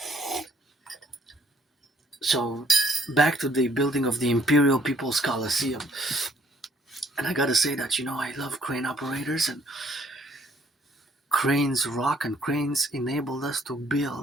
So back to the building of the Imperial People's Colliseum. And I gotta say that, I love crane operators, and cranes rock, and cranes enabled us to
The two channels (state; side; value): normal; both; correlation 0.64